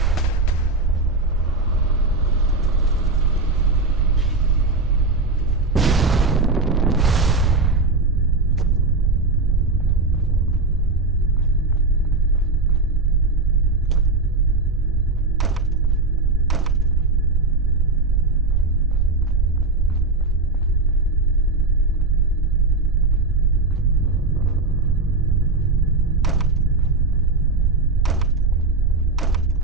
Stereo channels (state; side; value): quieter; left; 3.4 dB